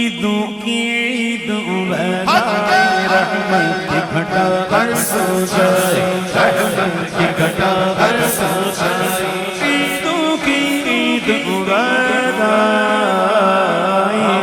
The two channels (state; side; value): identical; both; correlation 1.00